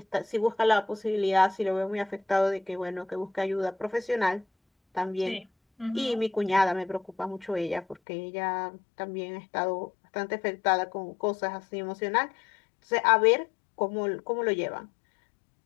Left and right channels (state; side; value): drops out; right; at 8.0 s